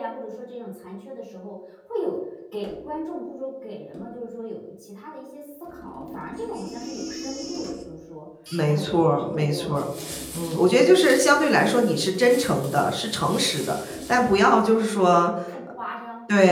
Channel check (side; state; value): both; identical; correlation 1.00